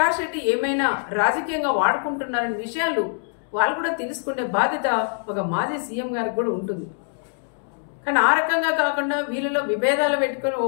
రెడ్డి ఏమైనా రాజకీయంగా వాడుకుంటున్నారనే విషయాలు వాళ్ళు కూడా తెలుసుకునే బాధ్యత ఒక మాజీ సీఎం గారికి కూడా ఉంటుంది. కానీ ఆ రకంగా కాకుండా వీళ్ళలో విభేదాలు పెట్టుకొని ఓ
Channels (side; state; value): right; silent; digital silence